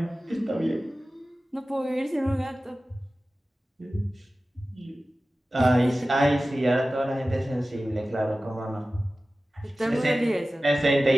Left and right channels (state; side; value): normal; both; correlation 0.96